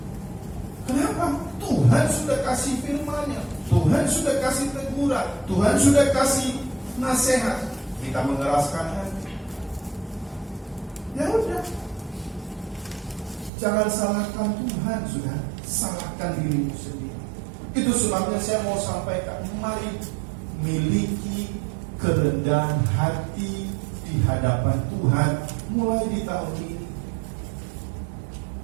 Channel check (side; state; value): left; drops out; at 13.5 s